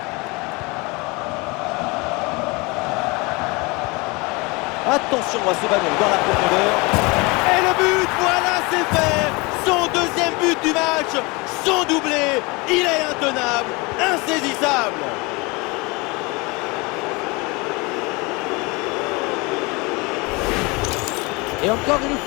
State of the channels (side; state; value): right; quieter; 26.5 dB